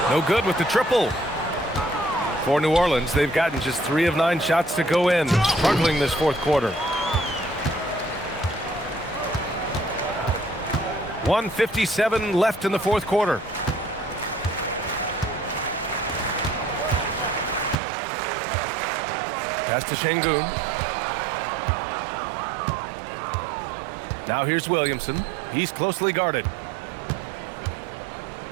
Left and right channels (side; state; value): left; drops out; at 17.8 s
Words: No good with the triple. For New Orleans, they've gotten just 3 of 9 shots to go in. Struggling this fourth quarter. 1:57 left in the fourth quarter. Pass to Şengün. Now here's Williamson. He's closely guarded.